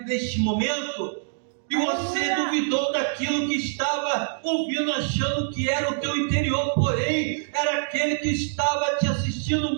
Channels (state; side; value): silent; left; digital silence